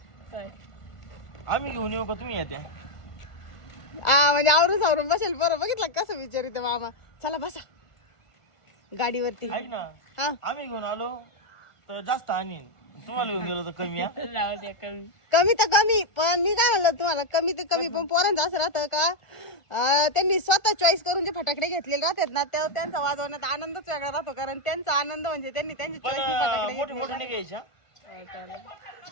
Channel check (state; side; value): late; right; 1.5 ms